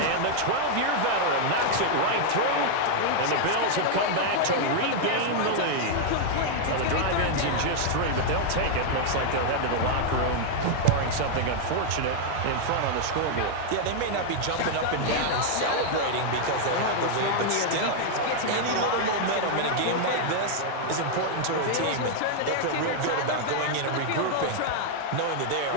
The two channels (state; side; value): different; both; correlation -0.01